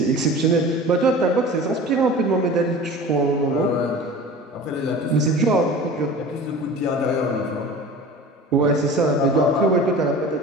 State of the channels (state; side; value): normal; both; correlation 0.38